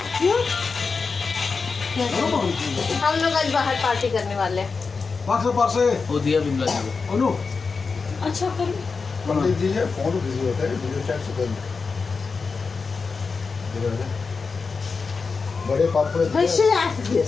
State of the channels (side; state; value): right; quieter; 4.7 dB